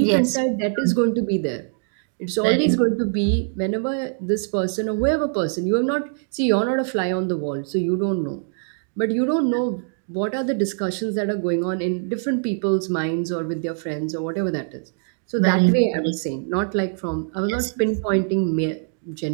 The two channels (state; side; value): silent; left; digital silence